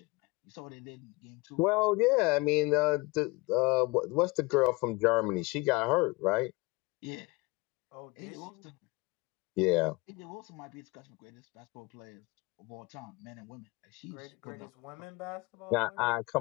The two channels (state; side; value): quieter; right; 24.6 dB